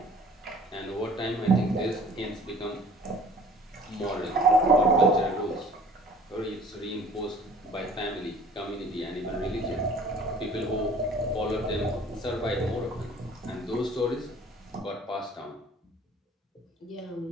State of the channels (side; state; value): both; normal; correlation 0.50